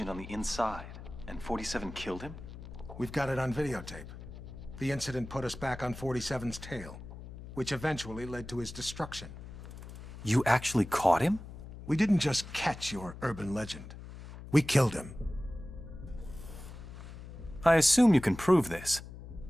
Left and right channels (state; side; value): noise; left; hum, 13 dB below the sound